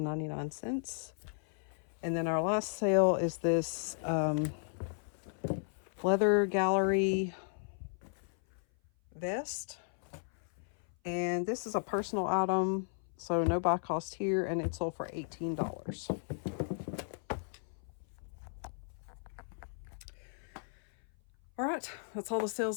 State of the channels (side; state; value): right; silent; 54 dB below the other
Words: And then our last sale is this leather gallery vest, and this is a personal item, so no buy cost here, and it sold for $18. All right, that's all the